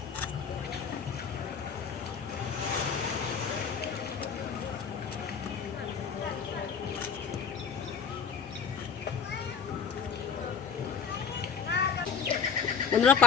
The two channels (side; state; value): right; quieter; 6.4 dB